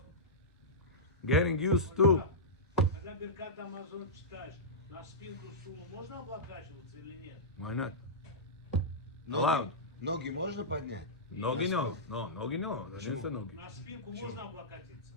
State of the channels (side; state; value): both; normal; correlation -0.14